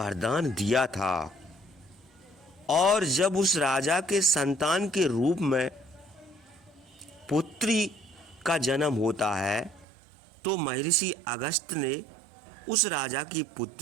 दिया था, और जब उस राजा के संतान के रूप में पुत्री का जन्म होता है तो महर्षि अगस्त ने उस राजा की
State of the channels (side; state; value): left; drops out; at 9.9 s